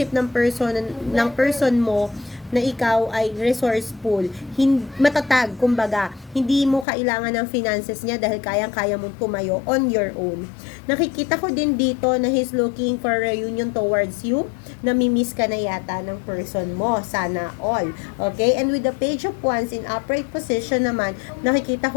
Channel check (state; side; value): drops out; right; at 6.9 s